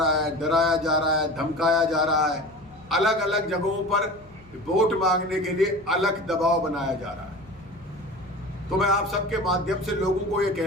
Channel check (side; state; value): left; noise; hum, 26 dB below the sound